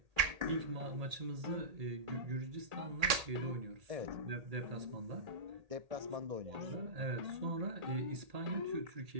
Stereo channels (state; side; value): late; left; 1.8 ms